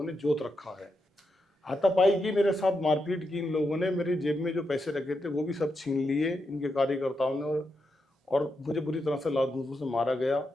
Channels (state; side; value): normal; both; correlation 0.85